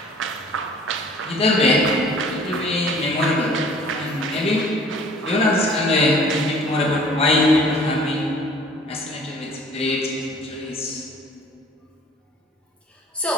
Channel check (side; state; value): both; normal; correlation 0.51